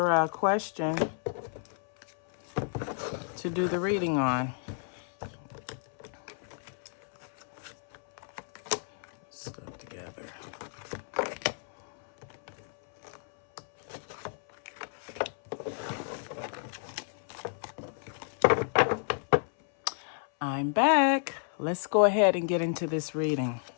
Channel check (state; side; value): silent; right; 57 dB below the other